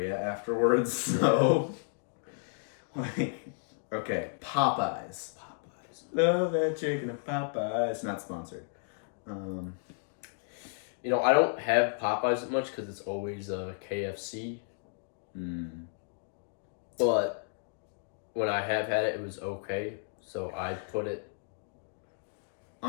afterwards. So, okay, Popeyes. Love that chicken at Popeyes. Not sponsored. I don't have Popeyes that much because it's always KFC. But when I have had it, it was okay. So I put it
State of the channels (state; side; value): silent; right; digital silence